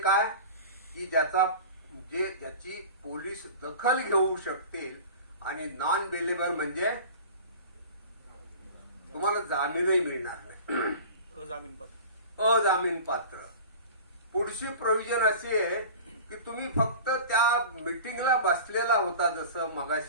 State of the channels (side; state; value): both; inverted; correlation -0.36